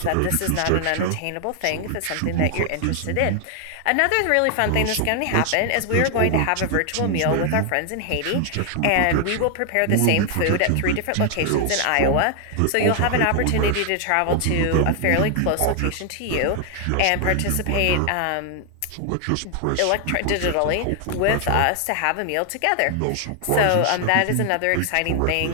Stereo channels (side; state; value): both; different; correlation 0.00